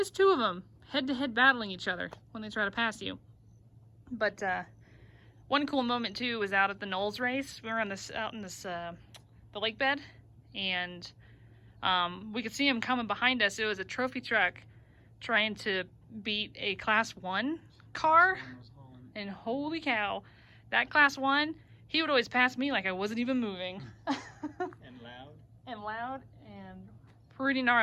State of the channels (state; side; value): identical; both; correlation 1.00